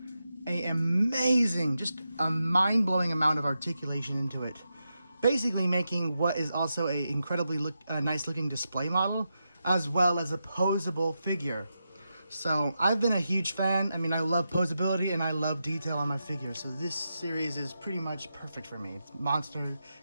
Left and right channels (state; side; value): inverted; both; correlation -0.88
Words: an amazing, just a mind-blowing amount of articulation into it. Basically making what is also a incredibly nice-looking display model, as well as a posable figure. So I've been a huge fan. I mean, I love posability and I love detail on my figures. So this series is pretty much perfect for me. It's